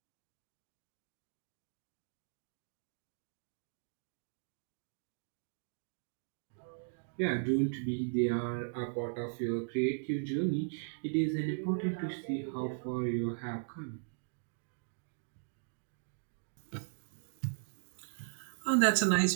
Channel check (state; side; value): silent; left; digital silence